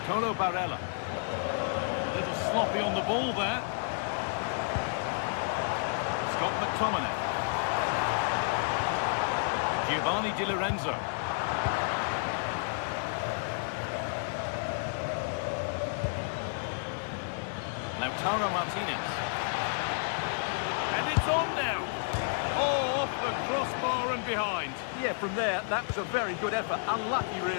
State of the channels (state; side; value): silent; right; 57 dB below the other